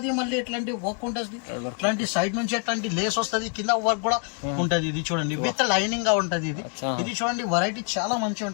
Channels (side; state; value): right; quieter; 37.9 dB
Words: మళ్ళీ ఇట్లాంటి వర్క్ ఉంటది, ఇట్లాంటి సైడ్ నుంచి ఇట్లాంటి లేస్ వస్తుంది, కింద వర్క్ కూడా ఉంటది. ఇది చూడండి, విత్ లైనింగ్ గా ఉంటది. ఇది చూడండి, వెరైటీ చాలా మంచిగా